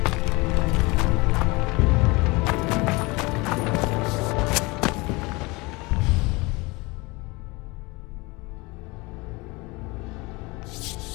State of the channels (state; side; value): quieter; right; 24.7 dB